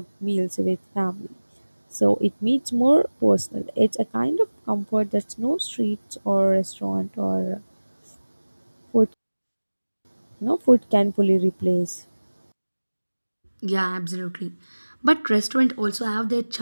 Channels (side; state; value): both; inverted; correlation -1.00